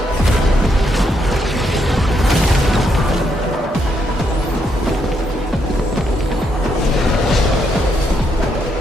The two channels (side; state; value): both; normal; correlation 0.77